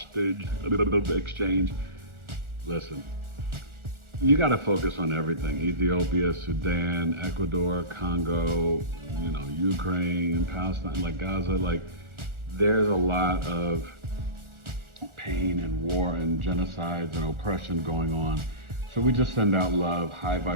exchange. Listen, you got to focus on everything. Ethiopia, Sudan, Ecuador, Congo, Ukraine, Palestine, like Gaza, there's a lot of pain and war and genocides and oppression going on. So we just send out love, high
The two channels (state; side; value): late; left; 1.4 ms